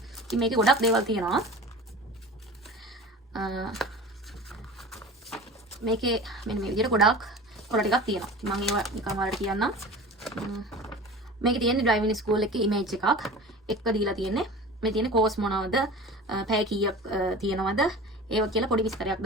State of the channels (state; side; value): normal; both; correlation 0.37